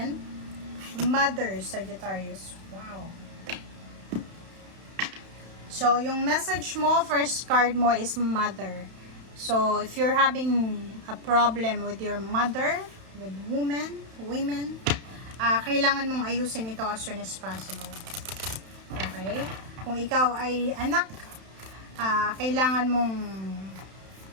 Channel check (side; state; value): left; late; 31 ms